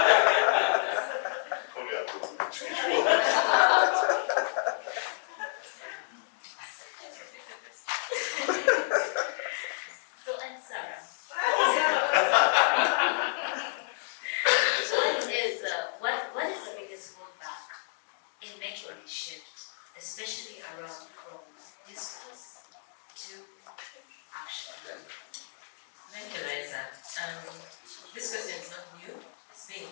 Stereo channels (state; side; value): silent; right; digital silence